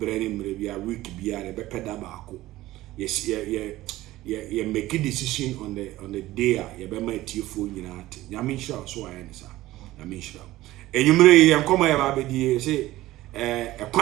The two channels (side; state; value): left; quieter; 16.6 dB